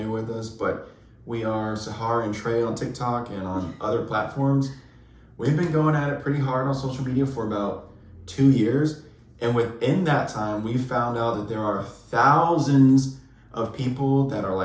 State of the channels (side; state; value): both; identical; correlation 1.00